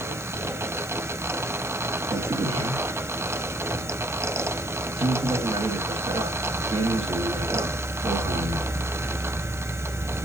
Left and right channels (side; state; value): left; noise; hiss, 18 dB below the sound